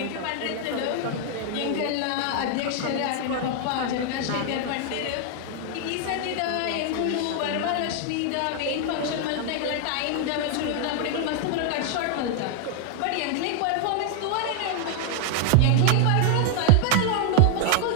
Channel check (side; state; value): both; different; correlation 0.00